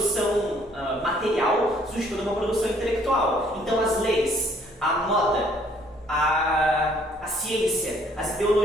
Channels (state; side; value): normal; both; correlation 0.63